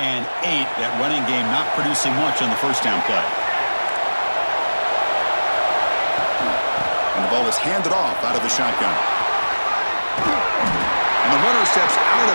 8. That running game not producing much on the first down play. And the ball is handed off out of the shotgun. And the runner steps out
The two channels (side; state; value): both; inverted; correlation -1.00